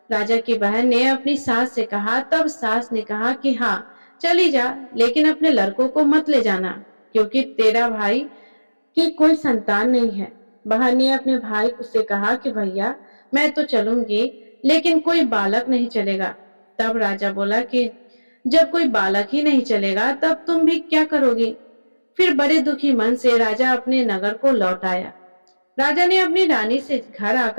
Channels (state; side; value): inverted; both; correlation -1.00